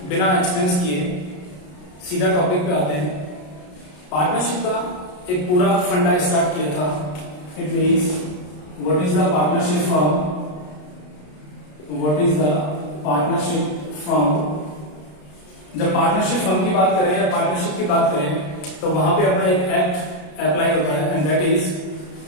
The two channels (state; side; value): late; right; 33 ms